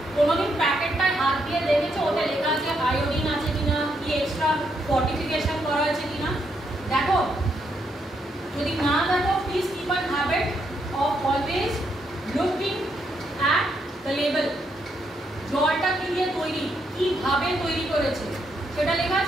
কোনোদিন প্যাকেটটায় হাত দিয়ে দেখেছো ওতে লেখা আছে আয়োডিন আছে কিনা, কি এক্সট্রা ফর্টিফিকেশন করা আছে কিনা? দেখো, যদি না দেখো please keep an habit of always looking at the label. জলটা কি দিয়ে তৈরি, কিভাবে তৈরি করেছে সেটা লেখা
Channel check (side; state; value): both; normal; correlation 0.77